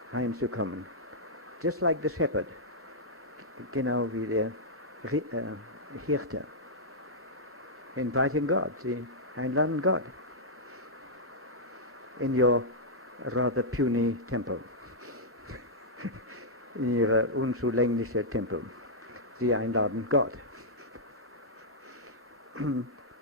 reinzukommen. Just like the shepherd. Genau wie der Hirte. Inviting God. Sie einladen Gott. In your rather puny temple. In ihrer unzulänglichen Tempel. Sie einladen Gott.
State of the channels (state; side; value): normal; both; correlation -0.09